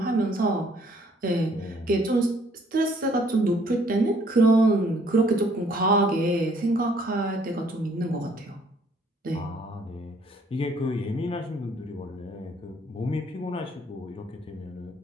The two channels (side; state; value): both; normal; correlation 0.63